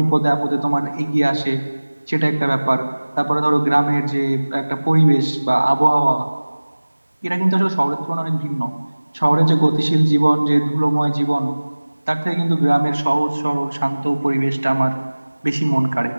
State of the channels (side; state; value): both; inverted; correlation -1.00